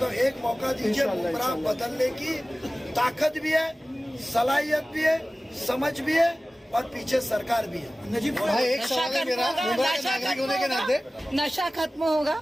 हूं, एक मौका दीजिए। गुमराह बदलने की ताकत भी है, सलाहियत भी है, समझ भी है, और पीछे सरकार भी है। नजीब भाई, एक सवाल है मेरा, मुमरा के नागरिक होने के नाते, नशा खत्म होगा?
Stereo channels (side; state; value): both; normal; correlation 0.97